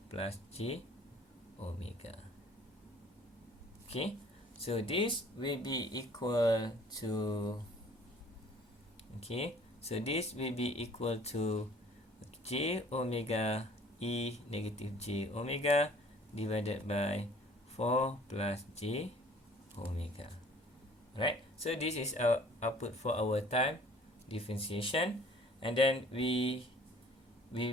plus J omega. Okay, so this will be equal to, okay, so this will be equal to J omega E negative J omega divided by 4 plus J omega. Right, so this is our output for our time differentiation, and then we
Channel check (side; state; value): both; normal; correlation 0.53